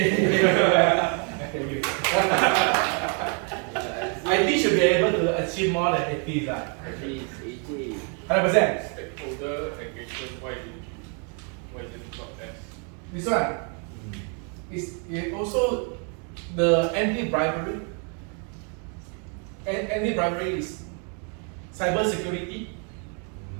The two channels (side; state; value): left; quieter; 38.9 dB